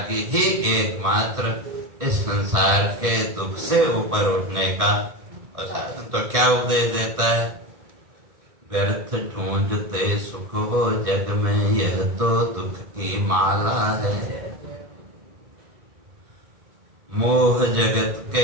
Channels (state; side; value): late; left; 1.6 ms